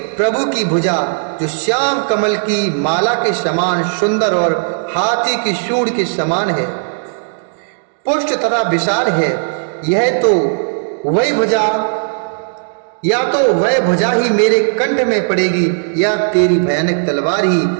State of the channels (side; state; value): left; silent; digital silence